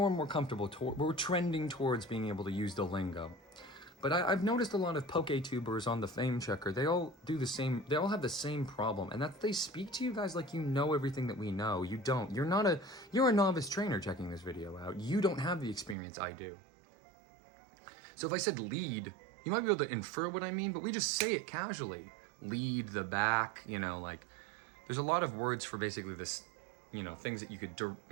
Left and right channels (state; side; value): drops out; left; at 16.0 s